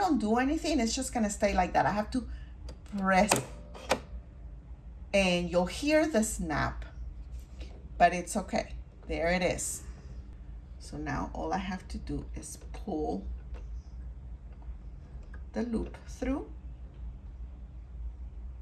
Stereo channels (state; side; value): identical; both; correlation 1.00